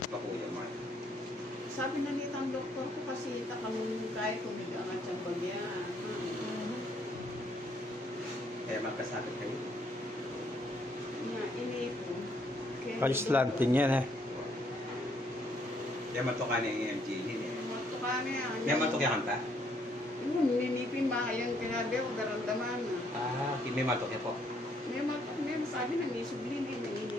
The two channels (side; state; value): both; normal; correlation 0.69